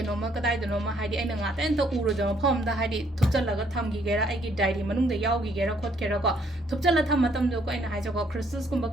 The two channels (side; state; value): both; normal; correlation 0.66